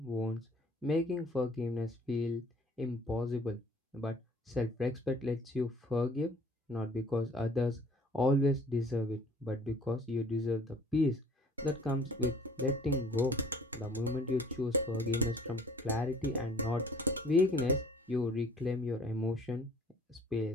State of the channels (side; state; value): both; normal; correlation 0.53